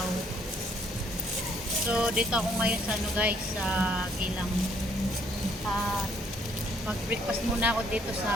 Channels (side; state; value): both; normal; correlation 0.66